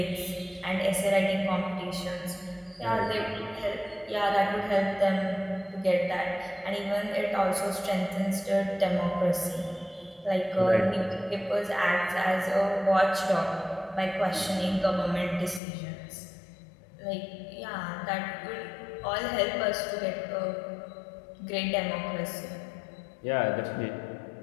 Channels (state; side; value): drops out; right; at 15.6 s